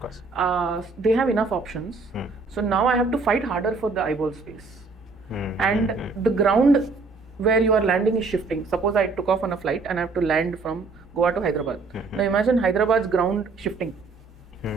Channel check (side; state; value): left; quieter; 4.1 dB